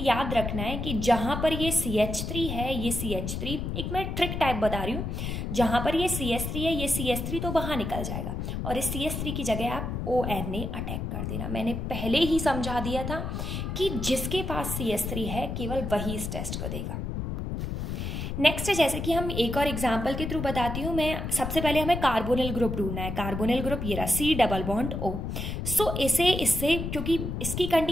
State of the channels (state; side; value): noise; left; rumble, 4 dB below the sound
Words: याद रखना है कि जहाँ पर ये CH3 है, ये CH3, एक मैं ट्रिक टाइप बता रही हूँ, जहाँ पर ये CH3 है, ये CH3 तो बाहर निकल जाएगा, और इस CH3 की जगह आप ONA अटैक कर देना। मैंने पहले ही समझा दिया था कि जिसके पास CH3 है केवल वही इस टेस्ट को देगा। नेक्स्ट है, जैसे कि हम एक और एग्जांपल के थ्रू बताती हूँ मैं। सबसे पहले हमें कार्बोनिल ग्रुप ढूंढना है। कार्बोनिल ग्रुप ये रहा, C डबल बॉन्ड O। सो इससे क्योंकि इसकी